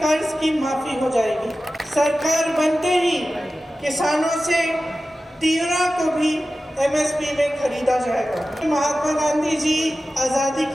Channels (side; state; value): both; normal; correlation 0.94